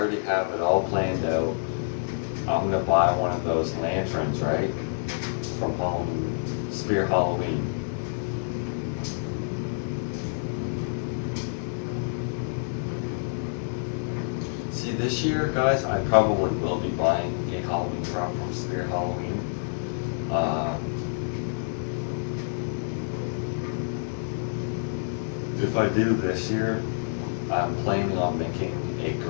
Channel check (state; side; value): silent; right; 60 dB below the other